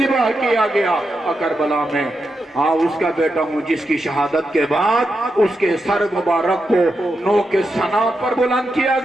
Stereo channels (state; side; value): normal; both; correlation 0.86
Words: کیا گیا کربلا میں، ہاں اس کا بیٹا ہوں جس کی شہادت کے بعد اس کے سر مبارک کو نوک ثنا پر بلند کیا